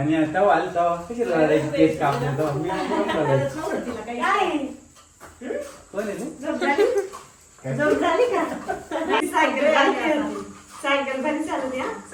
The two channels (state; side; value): identical; both; correlation 1.00